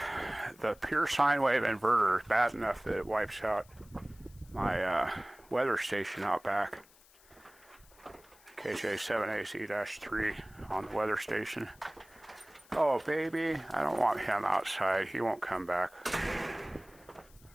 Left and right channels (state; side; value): noise; left; hiss, 27 dB below the sound